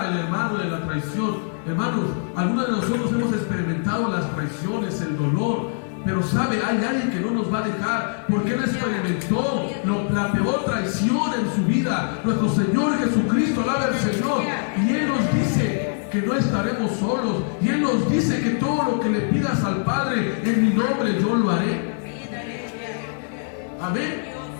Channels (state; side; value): silent; right; digital silence